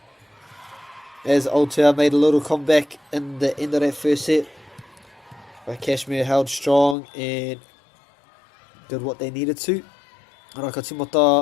as Aotea made a little comeback in the end of that first set. But Cashmere held strong and did what they needed to. Ara ka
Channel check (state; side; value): drops out; right; at 7.0 s